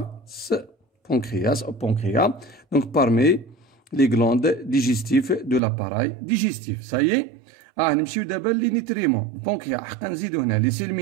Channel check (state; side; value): drops out; left; at 5.6 s